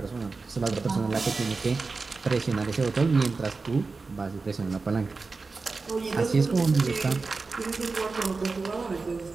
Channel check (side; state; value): left; quieter; 4.1 dB